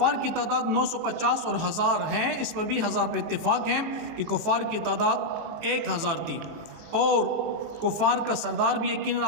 کی تعداد 950 اور 1000 ہیں, اس پر بھی 1000 پہ اتفاق ہیں کہ کفار کی تعداد 1000 تھی. اور کفار کا سردار بھی یقیناً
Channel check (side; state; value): left; late; 18 ms